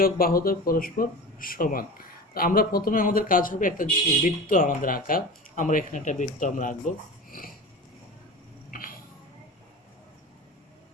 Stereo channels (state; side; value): normal; both; correlation 0.32